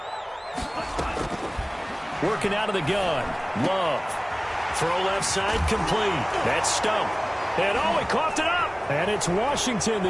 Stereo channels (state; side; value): identical; both; correlation 1.00